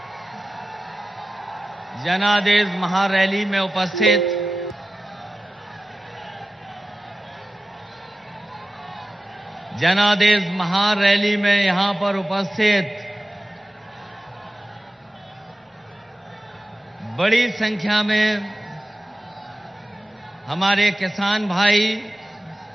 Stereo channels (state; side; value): normal; both; correlation 0.94